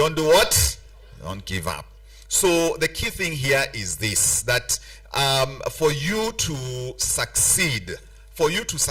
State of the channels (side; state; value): both; identical; correlation 1.00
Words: do what? Don't give up. So the key thing here is this, that for you to succeed,